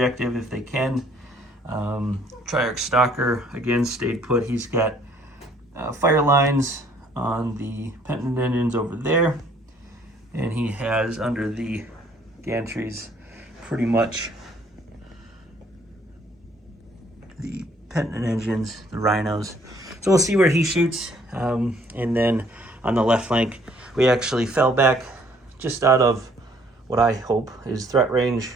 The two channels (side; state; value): both; normal; correlation 0.61